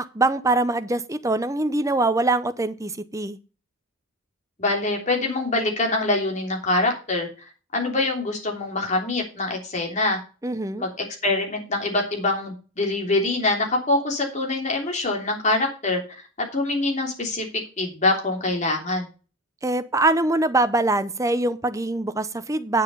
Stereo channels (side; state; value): both; normal; correlation 0.16